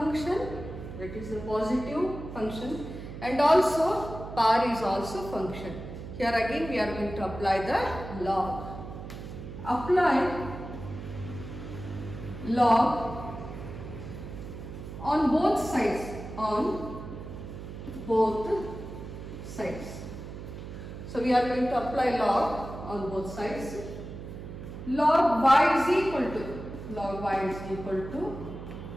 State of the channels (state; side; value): noise; right; hum, 10 dB below the sound